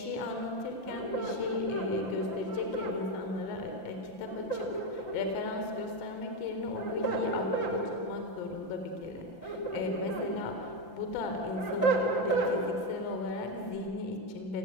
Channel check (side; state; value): right; late; 5.9 ms